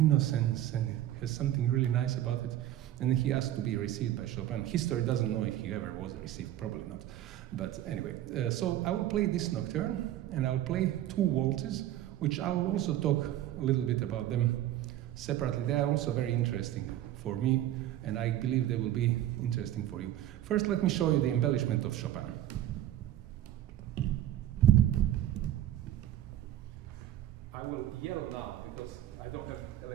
and has something really nice about it. And then he asked to be received by Chopin. History doesn't know if he ever was received, probably not. But anyway, so I will play this nocturne, and I'll play 2 waltzes, which I'll also talk a little bit about them separately. They are also very interesting for me, and I believe they will be interesting for you. First, let me show you the embellishment of Chopin. I will yell now because I don't have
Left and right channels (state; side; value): quieter; left; 12.8 dB